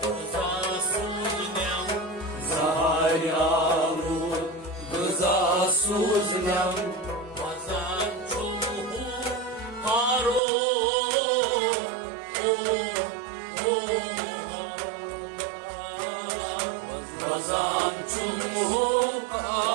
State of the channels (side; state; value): left; drops out; at 10.4 s